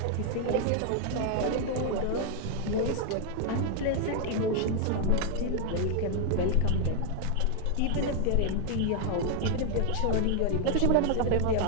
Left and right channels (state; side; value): different; both; correlation 0.00